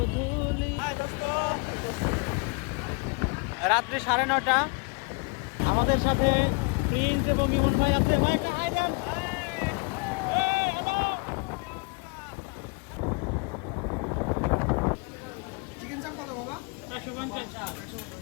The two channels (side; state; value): right; quieter; 32.1 dB